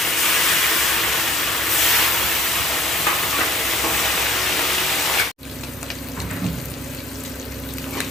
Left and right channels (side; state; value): both; normal; correlation 0.56